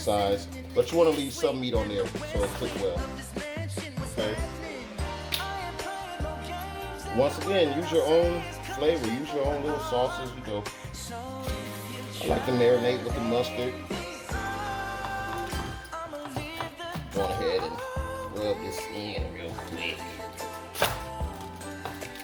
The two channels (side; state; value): both; identical; correlation 1.00